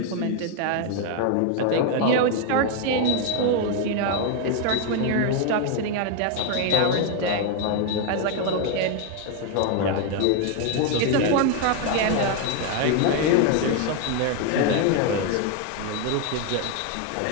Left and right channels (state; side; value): different; both; correlation 0.01